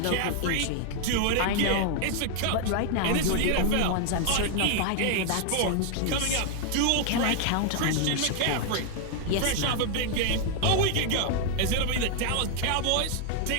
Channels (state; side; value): different; both; correlation 0.00